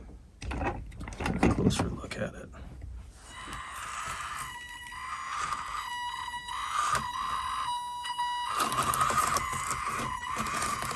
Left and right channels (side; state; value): both; identical; correlation 1.00